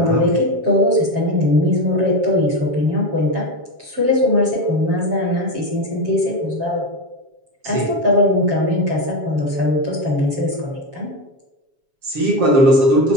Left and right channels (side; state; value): left; late; 7.3 ms